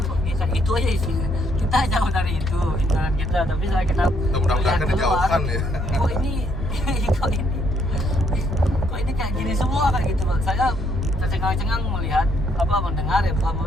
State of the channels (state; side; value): normal; both; correlation 0.71